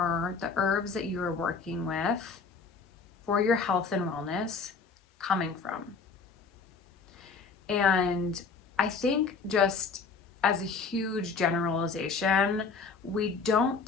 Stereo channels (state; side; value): quieter; right; 4.8 dB